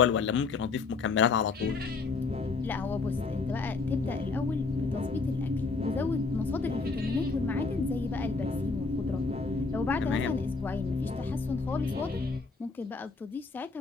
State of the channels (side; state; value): right; quieter; 4.2 dB